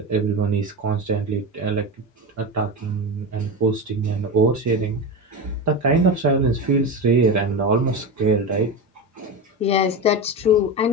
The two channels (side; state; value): both; normal; correlation 0.20